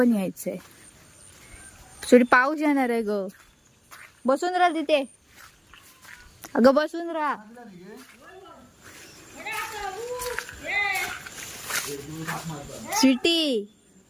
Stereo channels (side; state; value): both; identical; correlation 1.00